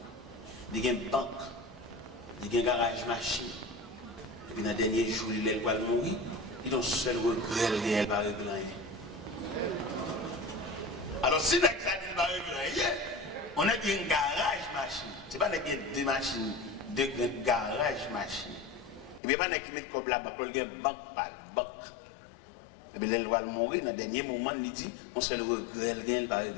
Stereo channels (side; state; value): right; drops out; at 19.2 s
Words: il y a une banque, il y a un garage machine. Et puis dans le dernier jour, il va mourir, il a un seul regret, il va régler rien. Alors si il va régler rien, on a un garage machine. Ce n'est pas deux machines, deux garages machine. Et puis pas qui met comme là, il y a une banque par banque. Et puis il va mourir, dans le dernier moment, il dit, on seul regret, il va